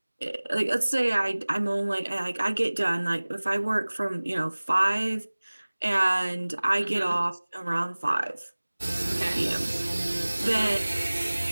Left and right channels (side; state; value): both; inverted; correlation -1.00